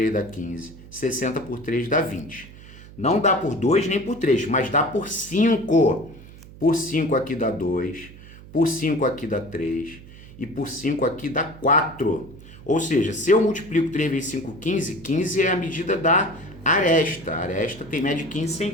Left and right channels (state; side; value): noise; right; hum, 18 dB below the sound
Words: dá 15, 60 por 3 dá 20. Não dá por 2 nem por 3, mas dá por 5. Por 5 aqui dá 2, por 5 aqui dá 3 e por 5 aqui dá 4. Ou seja, se eu multiplico 3 vezes 5, 15, 15 é a medida da aresta. A aresta tem média de 15